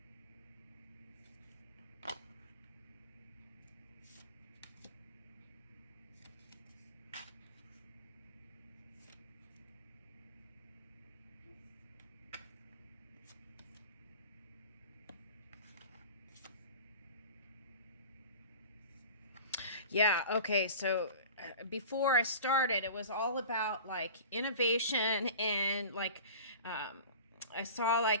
Yeah, okay, so before I started, it was all about like innovation and like um, I saw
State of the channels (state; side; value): inverted; both; correlation -0.38